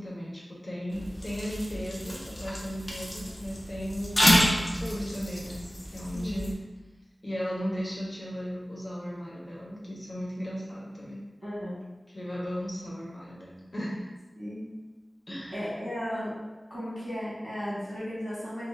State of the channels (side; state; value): both; normal; correlation 0.97